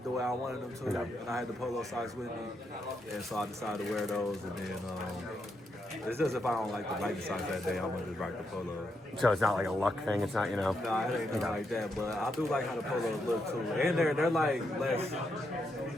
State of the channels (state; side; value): normal; both; correlation 0.81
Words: the way I wanted them to, and I had the polo socks with me, and so I decided to wear those. And then it's just if I don't like the Nike socks that day, I'm gonna just rock the polo. So it's not like a luck thing. It's not, Nah, it ain't nothing like that. But I do like how the polos look too, and they're like less.